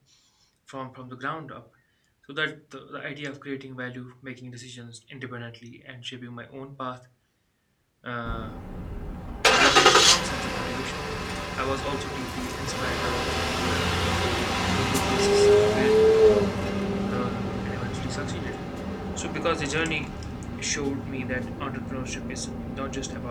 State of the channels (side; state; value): both; identical; correlation 1.00